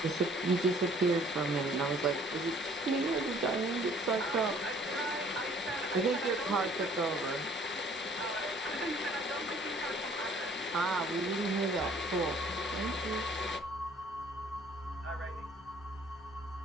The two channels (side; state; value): both; normal; correlation 0.57